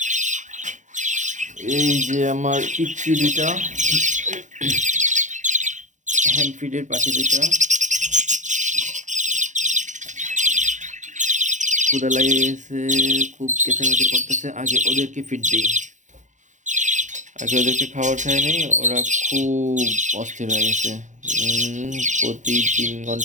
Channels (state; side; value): late; left; 0.35 ms